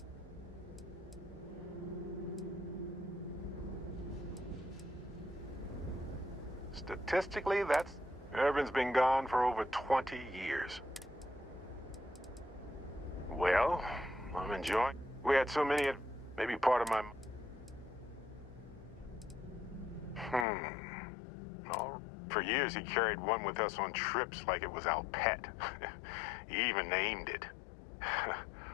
Statistically, that's... Irvin's been gone for over 20 years. Well, I'm enjoying... We had so many... Maybe part of my... Oh, for years he carried one with us on trips like it was our pet. He even named it.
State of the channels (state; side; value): drops out; right; at 20.5 s